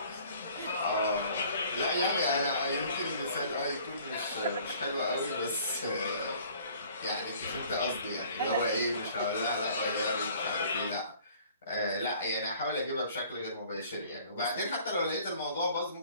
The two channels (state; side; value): inverted; both; correlation -0.54